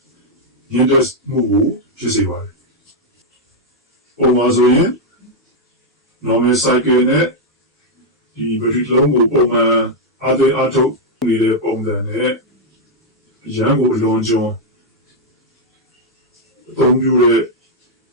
ညှိတဲ့မှုကိုဖြစ်စေပါတယ်။ပုံမှန်ဆိုရင် normal cycle နဲ့ဒီဘက်ထရီလုံးကိုပုံမှန်အားသွင်းအားထုတ်နေတဲ့ပုံစံနဲ့ရန်ကိုအလွန်ကျွံအသုံးပြုတဲ့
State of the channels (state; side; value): normal; both; correlation -0.02